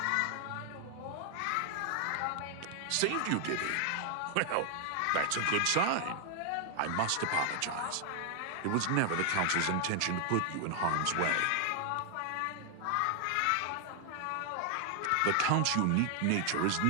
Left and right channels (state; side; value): different; both; correlation 0.00